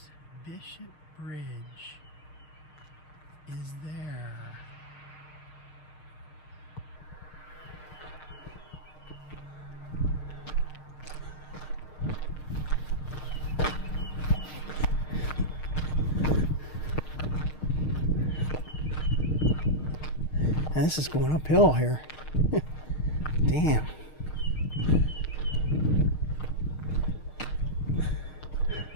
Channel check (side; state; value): right; late; 6.5 ms